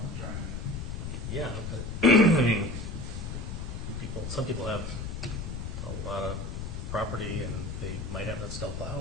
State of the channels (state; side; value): noise; left; rumble, 5 dB below the sound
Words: I'm trying to. yeah, but, I mean, some people have a lot of property, and they might have that